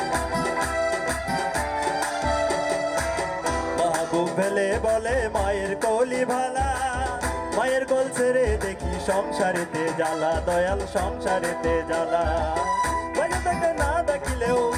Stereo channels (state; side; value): identical; both; correlation 1.00